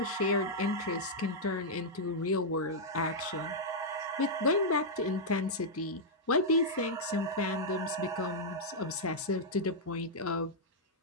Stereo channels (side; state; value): both; normal; correlation -0.06